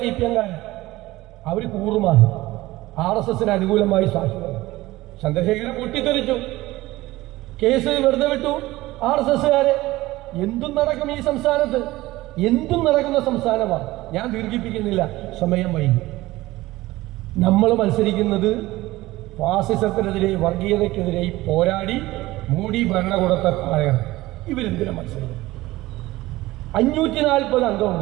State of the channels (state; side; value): quieter; left; 18.2 dB